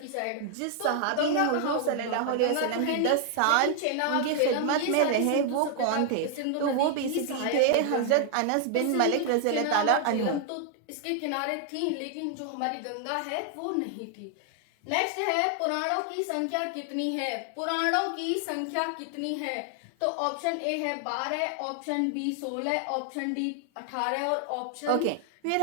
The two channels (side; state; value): both; different; correlation 0.00